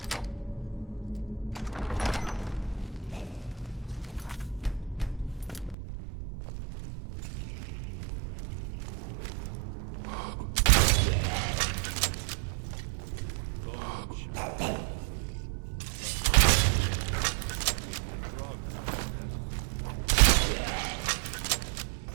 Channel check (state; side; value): drops out; left; at 5.8 s